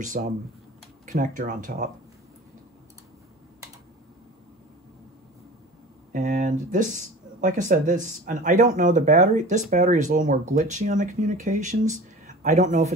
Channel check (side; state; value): both; normal; correlation 0.38